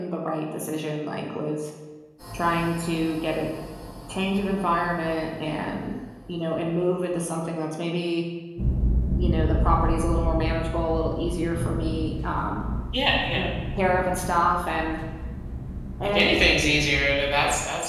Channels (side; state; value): both; identical; correlation 1.00